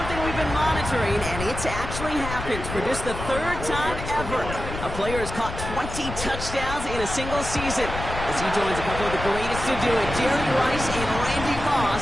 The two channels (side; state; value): left; noise; rumble, 7 dB below the sound